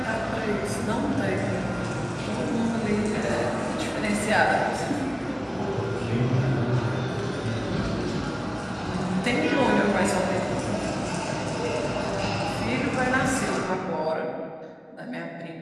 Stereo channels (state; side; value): identical; both; correlation 1.00